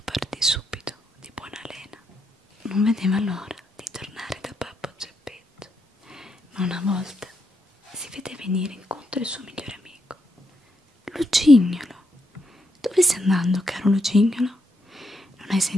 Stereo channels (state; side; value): normal; both; correlation 0.80